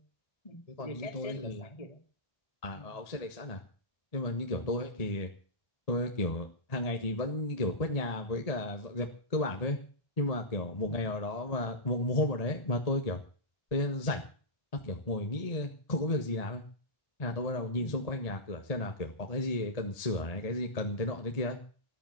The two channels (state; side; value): late; right; 1.8 ms